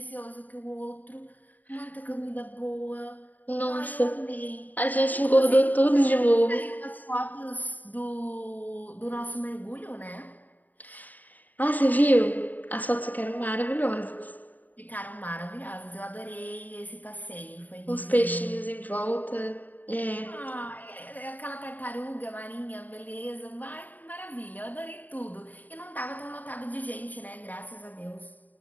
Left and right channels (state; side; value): late; right; 0.082 ms